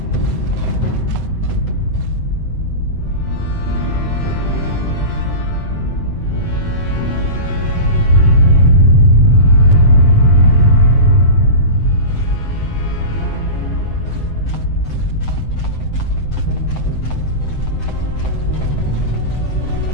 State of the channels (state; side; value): late; right; 7.8 ms